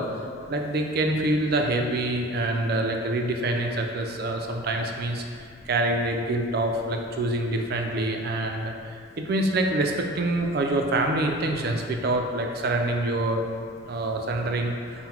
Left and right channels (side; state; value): both; normal; correlation 0.39